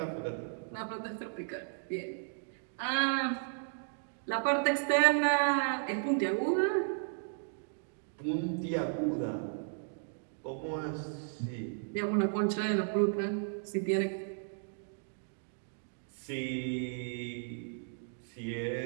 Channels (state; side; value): silent; left; digital silence